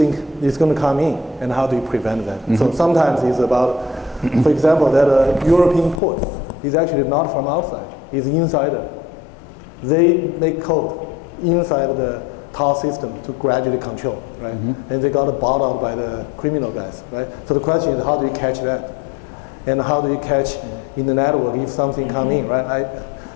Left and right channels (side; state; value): right; drops out; at 6.0 s